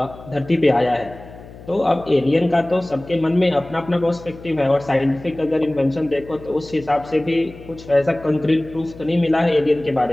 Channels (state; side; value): noise; left; hum, 18 dB below the sound